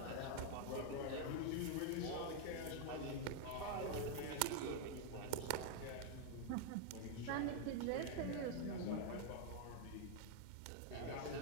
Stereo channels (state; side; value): different; both; correlation 0.00